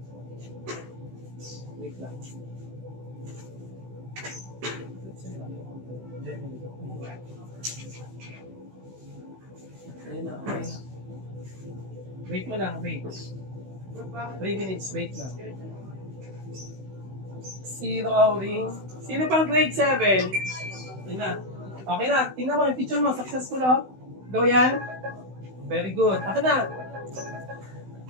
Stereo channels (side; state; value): left; late; 16 ms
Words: Wait lang. Ayun na, okay na. Wait mo lang, wait. 3 minutes, wait lang. Zero outing. Sino pang grade 7? Ayun na. Okay na, tingnan mo yung picture mo, successful oh. Go yan. Very good. Ako na.